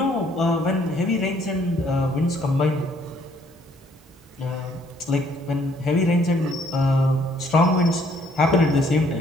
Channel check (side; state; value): both; normal; correlation 0.65